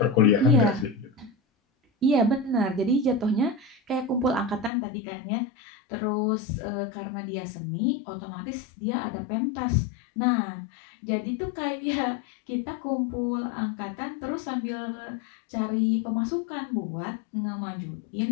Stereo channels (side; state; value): right; drops out; at 4.7 s